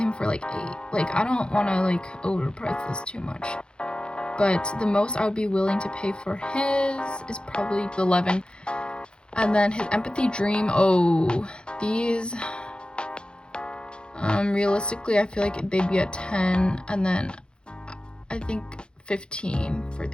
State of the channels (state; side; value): late; right; 0.051 ms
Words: for like 8. Like, I don't want to like overprice this too much, but the most I would be willing to pay for his is probably 11. And then his empathy dream, oh, these, realistically I feel like they'd be at 10, and then I think 15 for